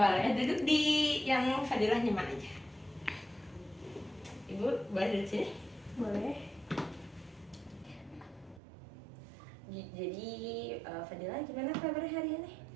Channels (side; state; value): left; drops out; at 8.6 s